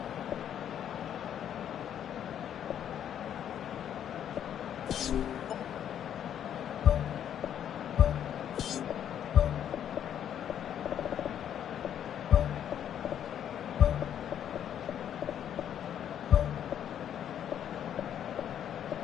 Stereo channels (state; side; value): quieter; right; 9.7 dB